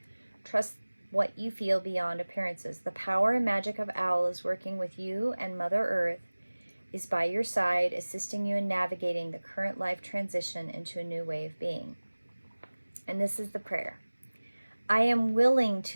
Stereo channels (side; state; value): both; inverted; correlation -1.00